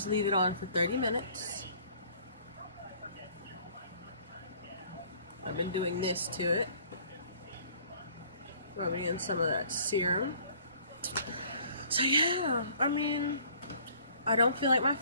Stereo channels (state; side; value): inverted; both; correlation -0.55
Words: to leave it on for 30 minutes. I've been doing this to it, rubbing in some of that serum. So yeah, I don't feel like my